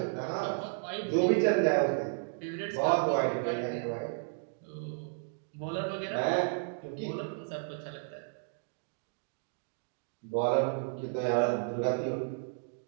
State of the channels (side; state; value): left; silent; digital silence